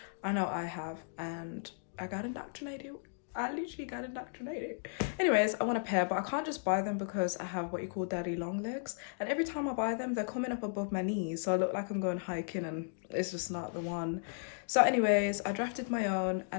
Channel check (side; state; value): right; silent; digital silence